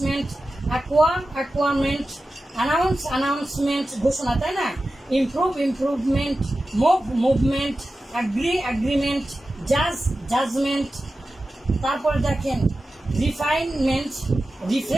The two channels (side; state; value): both; normal; correlation 0.94